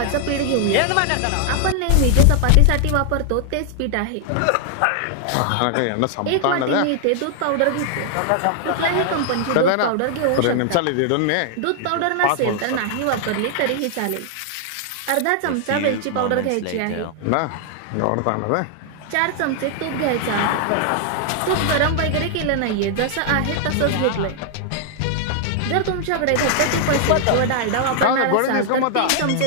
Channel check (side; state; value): both; different; correlation 0.00